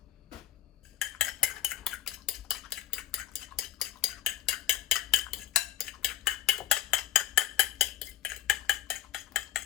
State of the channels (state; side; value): quieter; right; 12.4 dB